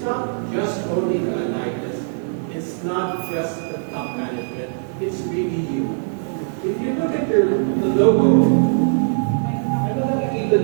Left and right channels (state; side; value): silent; left; digital silence